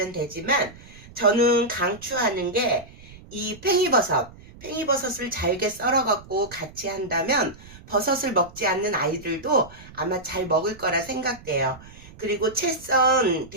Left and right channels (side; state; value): right; noise; rumble, 20 dB below the sound